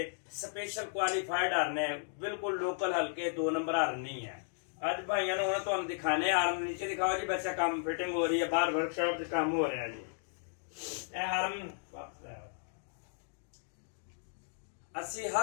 स्पेशल क्वालीफाइड हार्न है, बिल्कुल लोकल हल्के 2 नंबर हार्न नहीं है। अज भाइयों ने तुहानू दिखाने हार्न, नीचे दिखाओ जी बच्चा, काम फिटिंग हो रही है, बाहर वर्कशॉप से काम हो रहा है जी। यह हार्न असी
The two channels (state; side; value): silent; right; digital silence